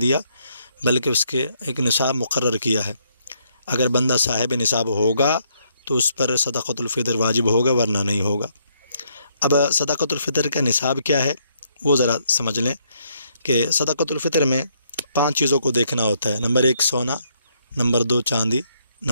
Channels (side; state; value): both; inverted; correlation -0.72